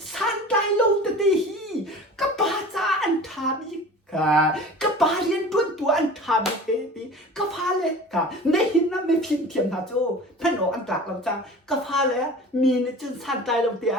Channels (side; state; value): both; normal; correlation 0.39